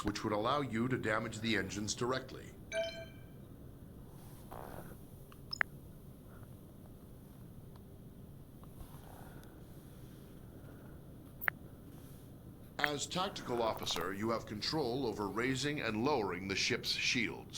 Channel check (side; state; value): both; identical; correlation 1.00